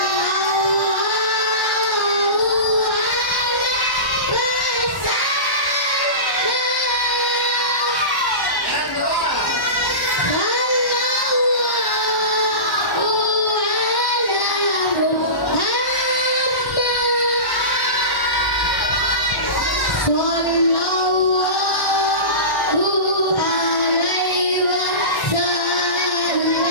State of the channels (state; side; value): late; right; 1.1 ms